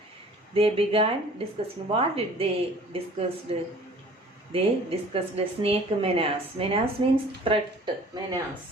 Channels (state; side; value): normal; both; correlation 0.49